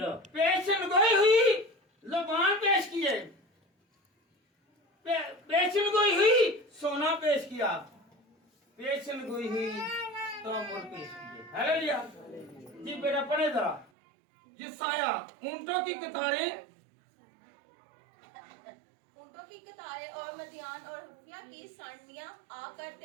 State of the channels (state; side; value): drops out; left; at 13.9 s